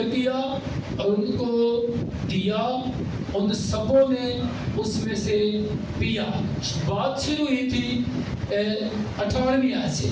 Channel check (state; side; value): identical; both; correlation 1.00